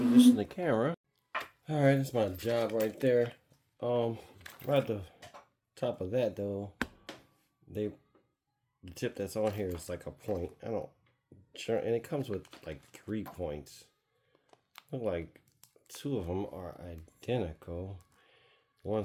the camera. All right, that's my job right there. Right at the top of that though, the tip that's on here is like a point. I don't sure, and it comes with like 3 points. Look like 2 of them are identical. One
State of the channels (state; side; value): identical; both; correlation 1.00